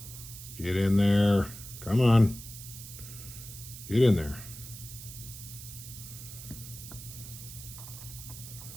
Get in there. Come on. Get in there.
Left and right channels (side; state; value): right; noise; hiss, 13 dB below the sound